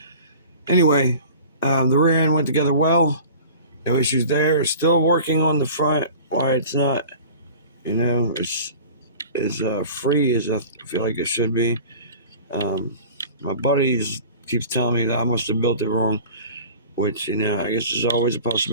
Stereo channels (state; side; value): inverted; both; correlation -0.41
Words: anyway, the rear end went together well. No issues there. Still working on the front. Why it's not, it's free as I feel like it should be. My buddies keeps telling me that I must have built it wrong, which I guess is always a